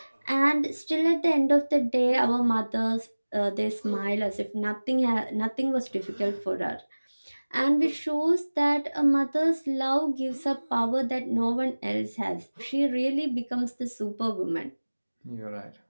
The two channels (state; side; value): inverted; both; correlation -1.00